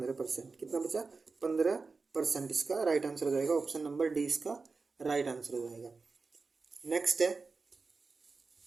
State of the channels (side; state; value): left; quieter; 4.2 dB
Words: कितना बचा? 15%। इसका राइट आंसर हो जाएगा ऑप्शन नंबर डी, इसका राइट आंसर हो जाएगा। नेक्स्ट है